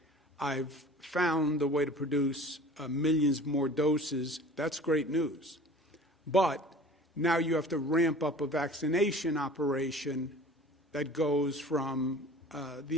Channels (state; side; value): normal; both; correlation 0.43